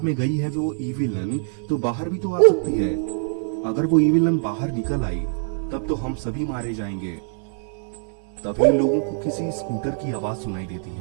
में गई है वो ईविलन तो बाहर भी तो आ सकती है। अगर वो ईविलन बाहर निकल आई तब तो हम सभी मारे जाएंगे। तभी इन लोगों को किसी स्कूटर की आवाज सुनाई देती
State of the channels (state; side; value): silent; left; 63 dB below the other